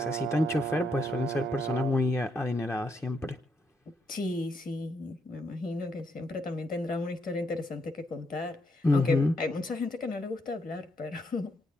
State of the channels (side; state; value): both; normal; correlation 0.77